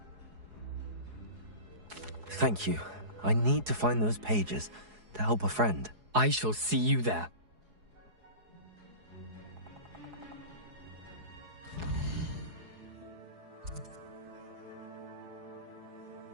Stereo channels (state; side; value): late; left; 4.8 ms